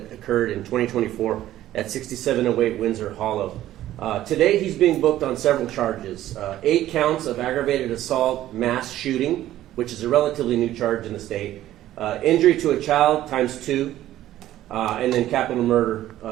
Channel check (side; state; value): left; quieter; 13.6 dB